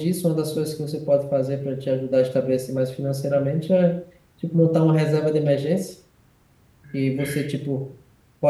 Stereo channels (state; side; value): identical; both; correlation 1.00